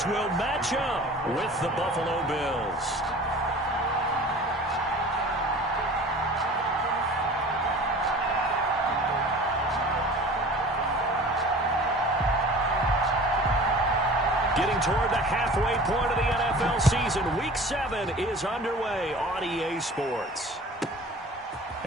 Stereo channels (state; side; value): normal; both; correlation 0.42